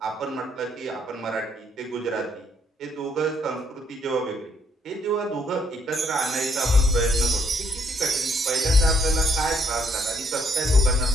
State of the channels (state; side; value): normal; both; correlation 0.70